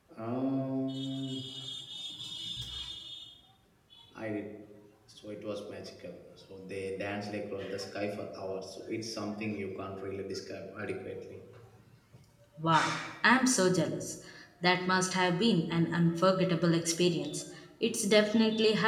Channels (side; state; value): both; identical; correlation 1.00